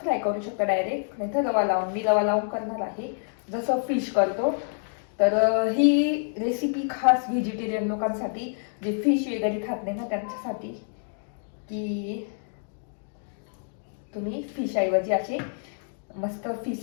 फ्राय करू शकता डायरेक्ट, नाही तर रवा लावून, मी रवा लावून करणार आहे जसं फिश करतो. तर ही रेसिपी खास व्हेजिटेरियन लोकांसाठी, जे फिश वगैरे खात नाही ना त्यांच्यासाठी, की तुम्ही फिश ऐवजी असे मस्त फिश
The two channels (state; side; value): silent; right; digital silence